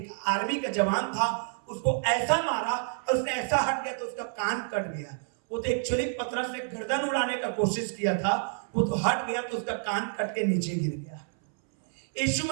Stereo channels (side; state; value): left; silent; 59 dB below the other